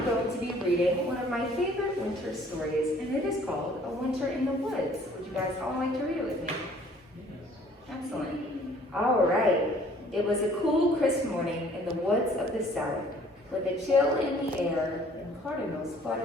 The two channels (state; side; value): normal; both; correlation 0.56